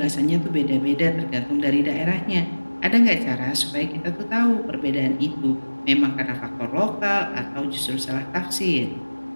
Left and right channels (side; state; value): both; inverted; correlation -1.00